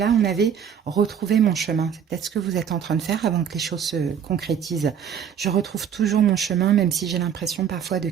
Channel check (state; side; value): quieter; left; 8.0 dB